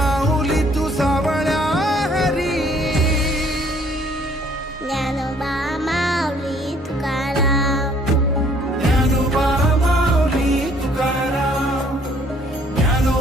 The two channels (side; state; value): both; normal; correlation 0.61